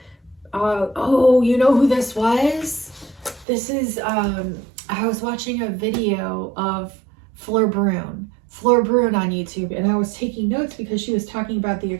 Oh, you know who this was? This is, I was watching a video of Fleur Brune on YouTube, and I was taking notes because she was talking about the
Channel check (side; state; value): left; drops out; at 3.5 s